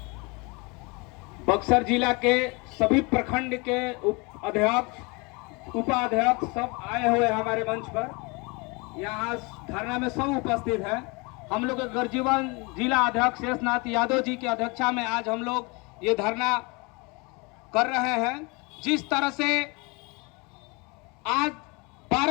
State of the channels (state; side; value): quieter; right; 28.3 dB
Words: बक्सर जिला के सभी प्रखंड के अध्यक्ष उपाध्यक्ष सब आए हुए हैं हमारे मंच पर। यहाँ धरना में सब उपस्थित हैं। हम लोग के गर्जीवन जिला अध्यक्ष शेषनाथ यादव जी की अध्यक्षता में आज हम लोग ये धरना कर रहे हैं। जिस तरह से आज